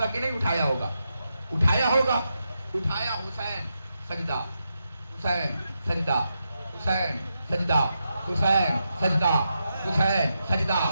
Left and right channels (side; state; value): both; inverted; correlation -0.86